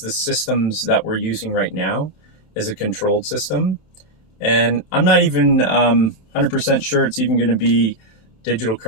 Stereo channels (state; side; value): late; right; 31 ms